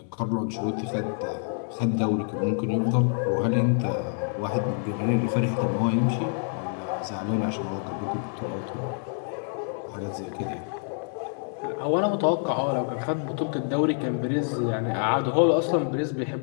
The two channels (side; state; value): right; silent; 60 dB below the other